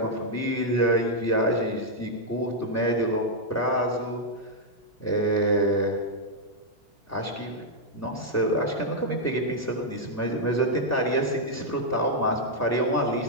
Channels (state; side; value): normal; both; correlation -0.04